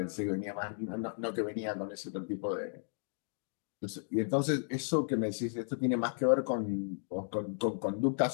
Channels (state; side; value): silent; right; digital silence